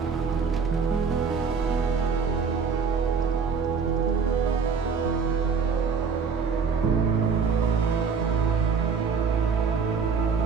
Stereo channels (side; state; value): left; quieter; 5.6 dB